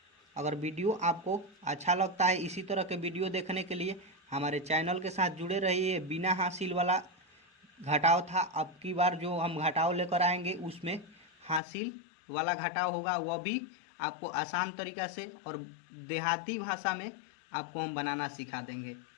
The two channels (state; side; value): drops out; right; at 11.6 s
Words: अगर वीडियो आपको अच्छा लगता है इसी तरह के वीडियो देखने के लिए हमारे चैनल के साथ जुड़े रहिए। बिना हासिल वाला घटाव था, अब की बार जो हम घटाव लेकर आएंगे उसमें हासिल वाला घटाव होगा, वह भी आपको आसान तरीक़ा से और देहाती भाषा में आपको हम बनाना सिखा देंगे।